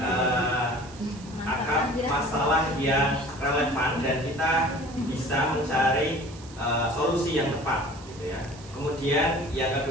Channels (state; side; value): noise; right; hiss, 20 dB below the sound